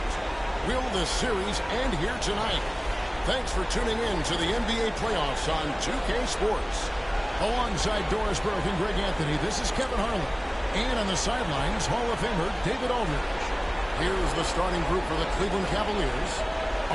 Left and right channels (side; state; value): both; identical; correlation 1.00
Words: Will the series end here tonight? Thanks for tuning in to the NBA playoffs on 2K Sports. Alongside Doris Burke and Greg Anthony, this is Kevin Harlan. And on the sidelines, Hall of Famer David Aldridge. Here's the starting group for the Cleveland Cavaliers.